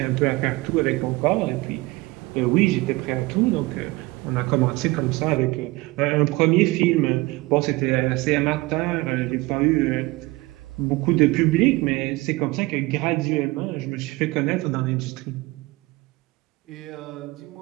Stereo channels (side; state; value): left; quieter; 21.4 dB